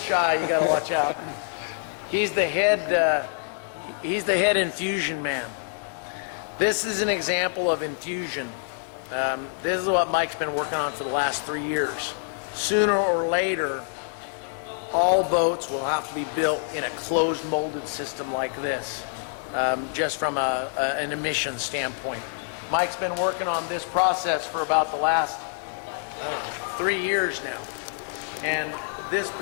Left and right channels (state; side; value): silent; right; digital silence